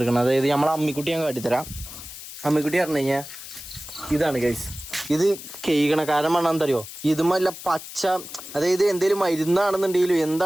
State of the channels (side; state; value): left; noise; hiss, 13 dB below the sound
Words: അതായത് നമ്മളെ അമ്മിക്കുട്ടി ഞാൻ കാട്ടിത്തരാം. അമ്മിക്കുട്ടി പറഞ്ഞു കഴിഞ്ഞാൽ ഇതാണ് കൈസ്. ഇത് കേൾക്കണ കാരണം വേണമെന്ന് അറിയോ? ഇതുമല്ല പച്ച, അതായത് എന്തേലും മരുന്നാണെന്നുണ്ടെങ്കിലും